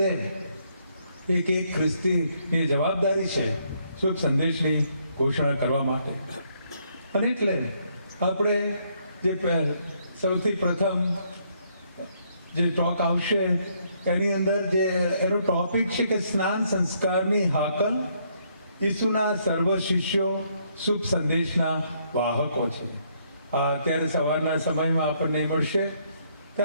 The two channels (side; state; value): both; inverted; correlation -0.71